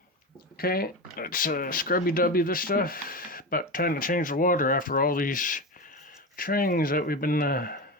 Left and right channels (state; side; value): normal; both; correlation 0.20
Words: Okay, let's scrubby-dubby this stuff. About time to change the water after all these trains that we've been